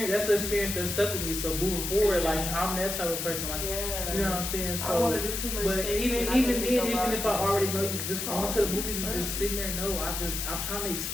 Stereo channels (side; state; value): left; noise; hiss, 3 dB below the sound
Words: That's an experience that stuck with me. So moving forward, like I'm that type of person. Like you know what I'm saying. I don't want So. to do too much. But tasting. even I then, think that your even if I body- already know you, just going to the movies and just sitting there, no, I'm trying to